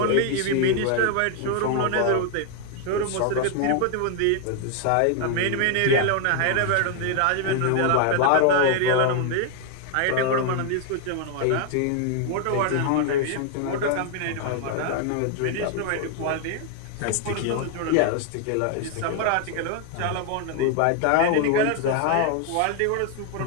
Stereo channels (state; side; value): different; both; correlation 0.00